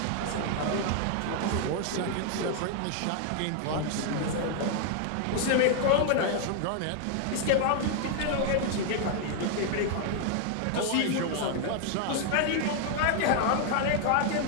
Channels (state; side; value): different; both; correlation 0.00